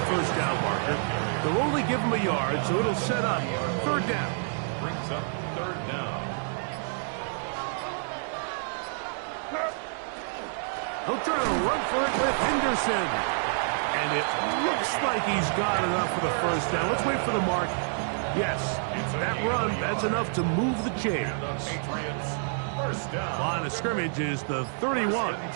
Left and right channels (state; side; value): silent; left; digital silence